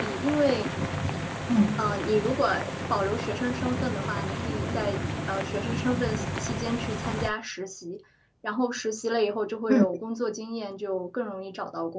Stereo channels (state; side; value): identical; both; correlation 1.00